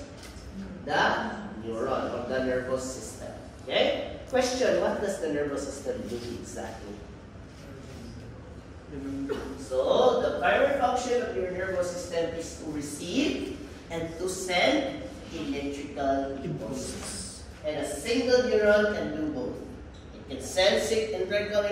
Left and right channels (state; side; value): identical; both; correlation 1.00